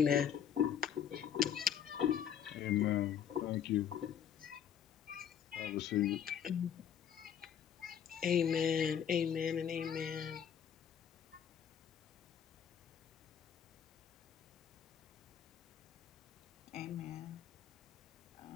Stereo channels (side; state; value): right; quieter; 8.6 dB